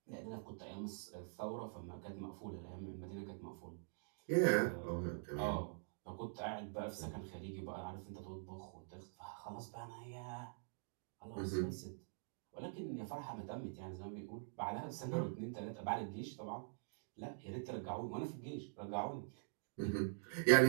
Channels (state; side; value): silent; left; digital silence